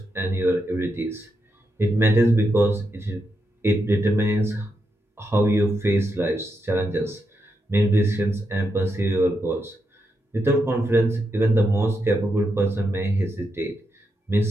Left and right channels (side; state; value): both; normal; correlation 0.84